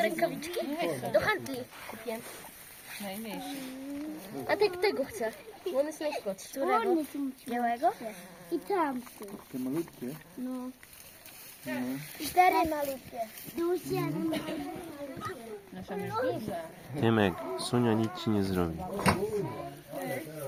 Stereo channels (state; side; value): identical; both; correlation 1.00